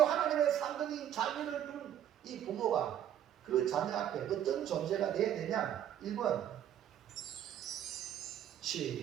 하나님의 상급인 자녀를 둔 이 부모가 그 자녀 앞에 어떤 존재가 되어야 되냐? 1번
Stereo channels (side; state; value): left; quieter; 10.6 dB